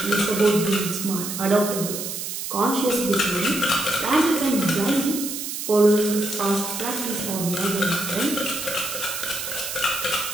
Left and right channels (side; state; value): right; noise; hiss, 5 dB below the sound